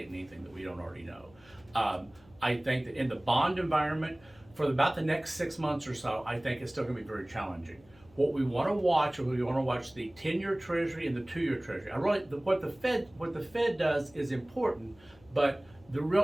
anything that we don't already know. I think that in the bond environment, for about the next 6 months or so, I think it's still going to be very challenging. What we want to watch, the 10-year Treasury and the 2-year Treasury. What the Fed does is important, but the real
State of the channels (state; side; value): noise; left; hum, 27 dB below the sound